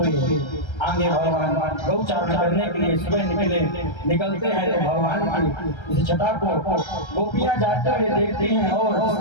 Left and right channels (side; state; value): right; late; 1.3 ms